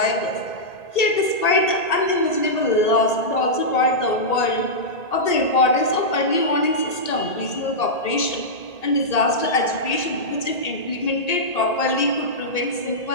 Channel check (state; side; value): late; right; 1.8 ms